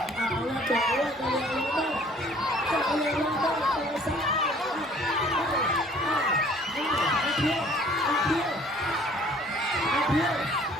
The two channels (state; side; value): normal; both; correlation 0.54